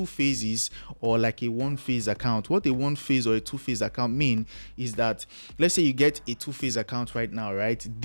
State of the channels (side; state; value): both; inverted; correlation -1.00